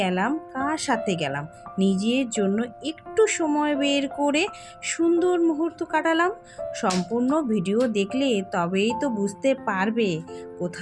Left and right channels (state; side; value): identical; both; correlation 1.00